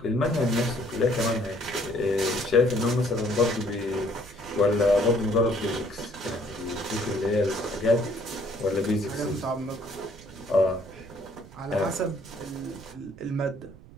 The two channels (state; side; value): noise; right; rumble, 20 dB below the sound